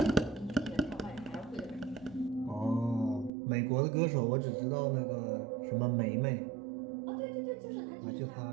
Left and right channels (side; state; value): left; drops out; at 3.3 s